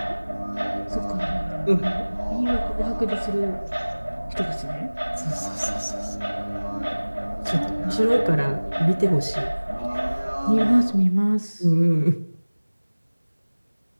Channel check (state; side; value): inverted; both; correlation -1.00